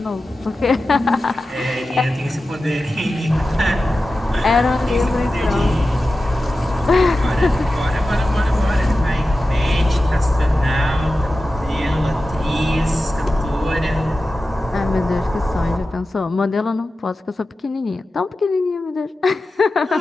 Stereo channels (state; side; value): normal; both; correlation 0.94